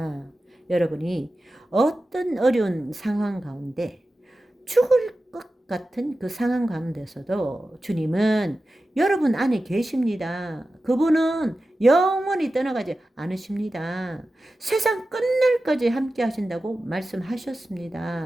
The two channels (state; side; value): normal; both; correlation 0.93